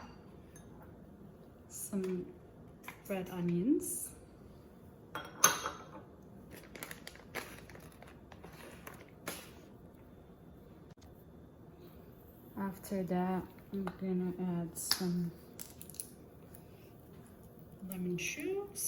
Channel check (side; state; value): both; identical; correlation 1.00